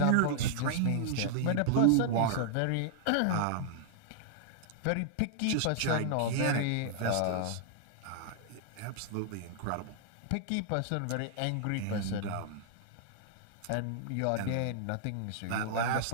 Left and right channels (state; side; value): different; both; correlation -0.01